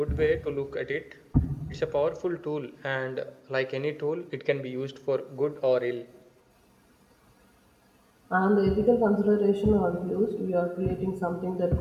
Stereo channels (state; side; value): identical; both; correlation 1.00